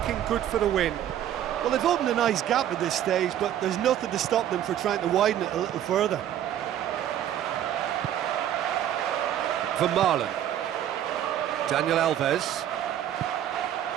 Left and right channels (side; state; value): left; quieter; 11.1 dB